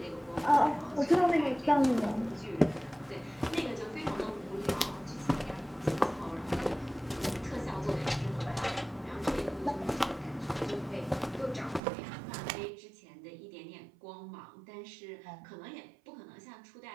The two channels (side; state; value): left; drops out; at 11.8 s